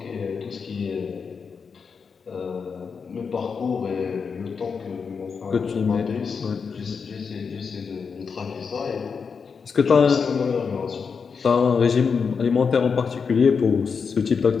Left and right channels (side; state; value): right; quieter; 5.7 dB